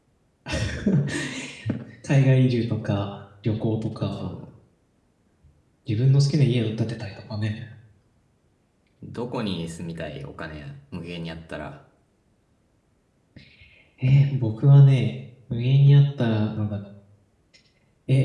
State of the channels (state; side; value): identical; both; correlation 1.00